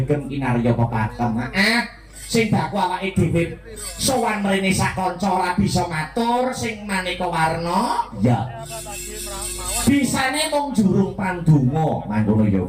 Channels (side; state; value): both; identical; correlation 1.00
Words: kinarya pepatem. Sing baku awake dhewe sowan mrene sak kanca ora bisa matur sing maneka warna, ya bisane mung jurung pandonga. Mangkono ya,